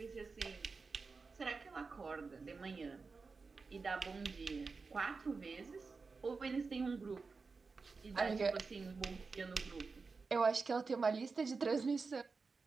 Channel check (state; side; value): quieter; left; 4.5 dB